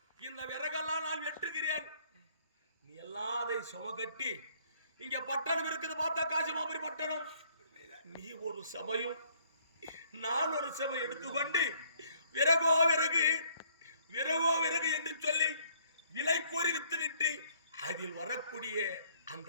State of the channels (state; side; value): inverted; both; correlation -0.63